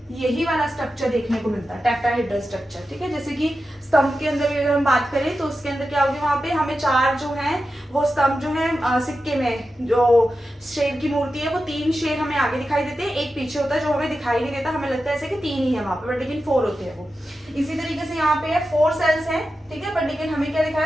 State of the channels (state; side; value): normal; both; correlation 0.91